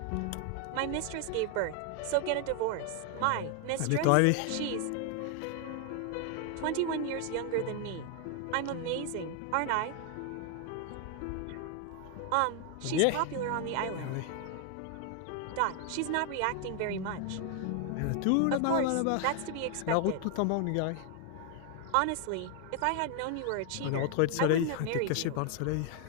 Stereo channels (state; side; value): different; both; correlation 0.00